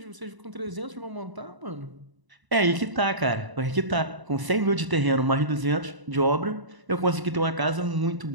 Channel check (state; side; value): late; left; 1.0 ms